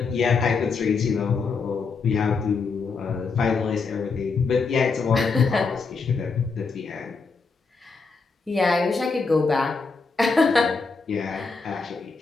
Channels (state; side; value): quieter; right; 4.6 dB